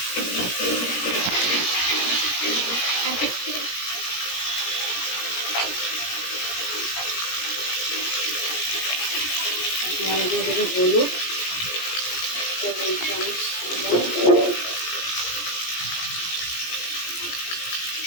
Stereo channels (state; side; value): late; right; 17 ms